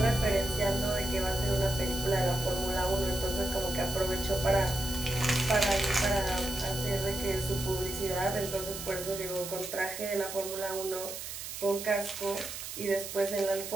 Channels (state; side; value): noise; right; hiss, 8 dB below the sound